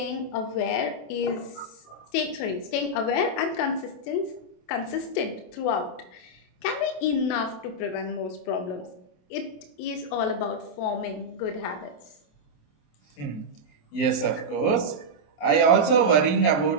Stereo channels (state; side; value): late; right; 27 ms